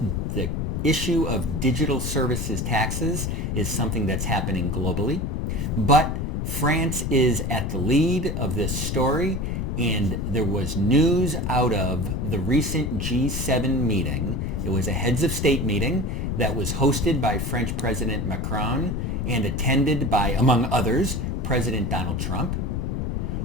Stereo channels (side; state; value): left; noise; rumble, 1 dB below the sound